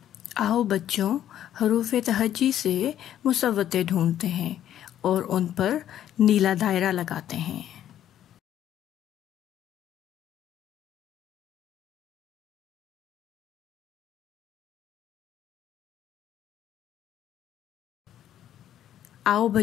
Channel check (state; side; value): quieter; right; 11.2 dB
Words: آؤ بچوں، حروف تہجی سے مصوتے ڈھونڈتے ہیں اور ان پر نیلا دائرہ لگاتے ہیں. آؤ